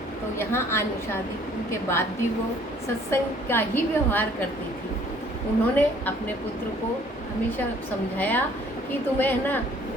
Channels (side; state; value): both; normal; correlation 0.58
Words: तो यहाँ आने शादी के बाद भी वो सत्संग का ही व्यवहार करती थी। उन्होंने अपने पुत्र को हमेशा समझाया कि तुम्हें